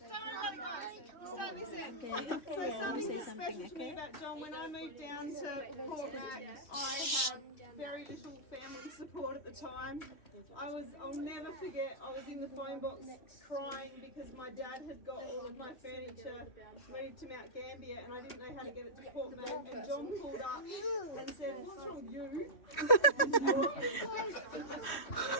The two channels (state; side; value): late; right; 2.8 ms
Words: So something that's special to me about John, when I moved down to Port Mac, I had very little family support at the time. I'll never forget, I was in the phone box crying because my dad had got all of my furniture moved to Mount Gambier and I didn't know how to get it to Port Mac, and John pulled up and said, "What's wrong with you?"